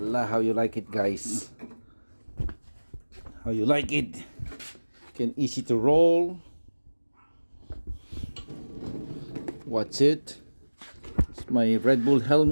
how you like it, guys? How you like it? Can easy to roll. What's it? It's my Red Bull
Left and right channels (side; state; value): both; inverted; correlation -1.00